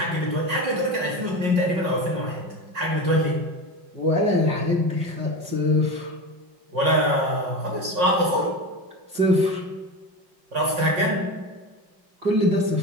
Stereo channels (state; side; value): late; left; 5.5 ms